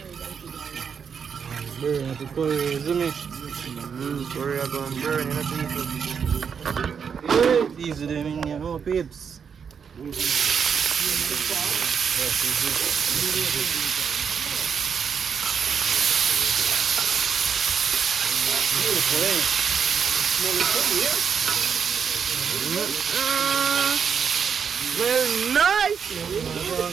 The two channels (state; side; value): quieter; left; 6.8 dB